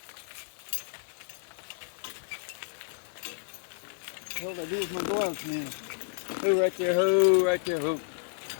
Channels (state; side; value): silent; right; digital silence